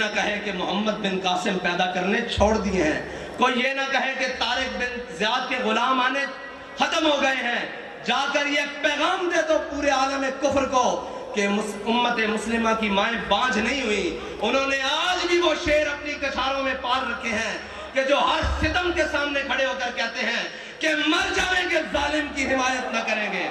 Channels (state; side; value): identical; both; correlation 1.00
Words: کہے کہ محمد بن قاسم پیدا کرنے چھوڑ دیے ہیں، کوئی یہ نہ کہے کہ طارق بن زیاد کے غلام آنے ختم ہو گئے ہیں۔ جا کر یہ پیغام دے تو پورے عالم کفر کو کہ امت مسلمہ کی مائیں بانجھ نہیں ہوئی۔ انہوں نے آج بھی وہ شعر اپنی کچھاروں میں پال رکھے ہیں کہ جو ہر ستم کے سامنے کھڑے ہو کر کہتے ہیں کہ مر جائیں گے ظالم کی حمایت نہ کریں گے،